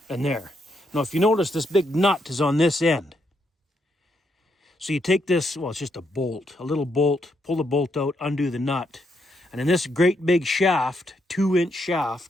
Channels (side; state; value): both; normal; correlation 0.78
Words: and there. Now, if you notice, this big nut is on this end. So you take this, well, it's just a bolt, a little bolt, pull the bolt out, undo the nut. And then this great big shaft, 2-inch